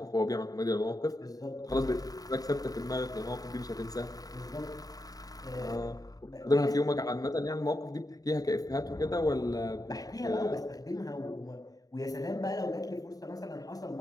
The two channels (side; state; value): right; late; 0.18 ms